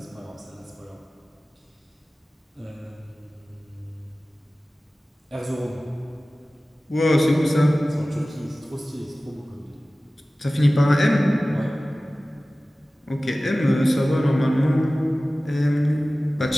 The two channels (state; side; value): normal; both; correlation 0.97